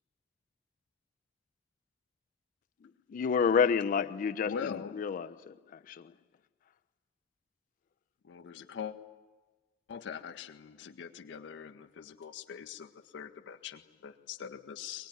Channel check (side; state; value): right; quieter; 6.1 dB